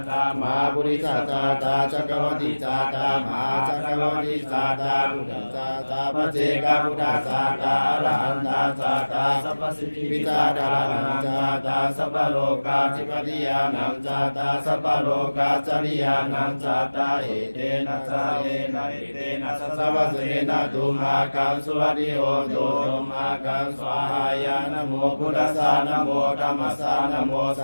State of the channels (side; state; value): both; inverted; correlation -1.00